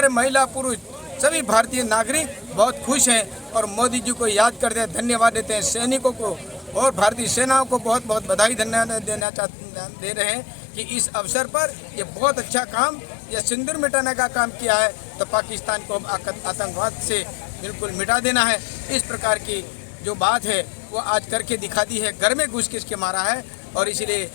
महिला पुरुष सभी भारतीय नागरिक बहुत खुश हैं और मोदी जी को याद करते हैं, धन्यवाद देते हैं। सैनिकों को और भारतीय सेनाओं को बहुत बहुत बधाई दे रहे हैं कि इस अवसर पर ये बहुत अच्छा काम, ये सिंदूर मिटाने का काम किया है। तो पाकिस्तान को आतंकवाद से बिल्कुल मिटा देना है, इस प्रकार की जो बात है वो आज करके दिखा दी है। घर में घुस के मारा है और इसलिए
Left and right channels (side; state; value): right; drops out; at 9.2 s